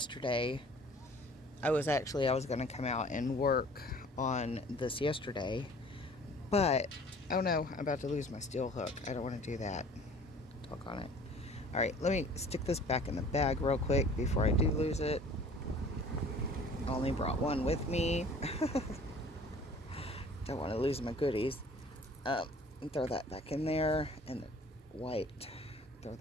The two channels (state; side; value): normal; both; correlation 0.50